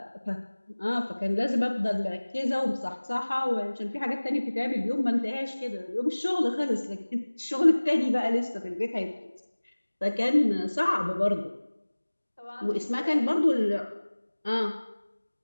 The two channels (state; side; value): inverted; both; correlation -1.00